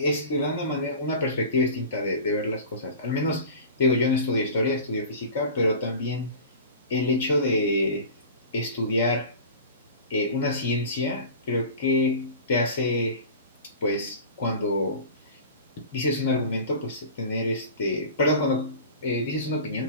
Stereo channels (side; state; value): both; inverted; correlation -0.36